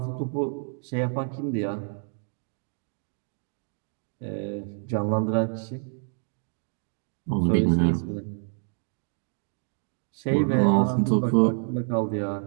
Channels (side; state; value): left; silent; 59 dB below the other